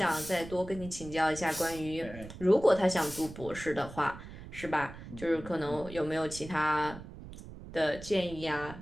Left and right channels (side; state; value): right; noise; rumble, 14 dB below the sound